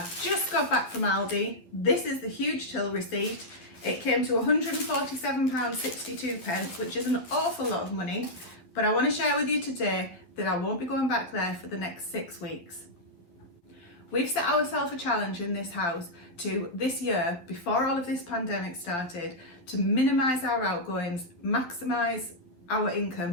just got back from Aldi. This is the huge till receipt. It came to £147.62, which is an awful lot of money, but I want to share with you today that I won't be going back there for the next 6 weeks. We've set ourselves a challenge in this house to this year, before all of this pandemic started, to minimise our outgoings, maximise our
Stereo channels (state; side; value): late; right; 11 ms